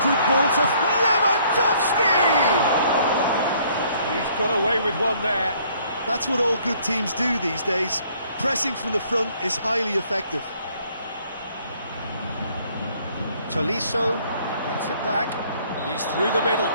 good ball to Lewandowski! He's got away with one there. That's what all good teams do these days. Pressing from the front is highly effective. Tolisso gets it back. He's through the middle.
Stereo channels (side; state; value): both; inverted; correlation -0.62